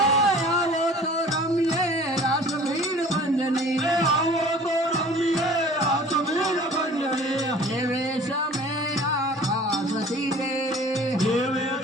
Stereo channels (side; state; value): both; normal; correlation 0.47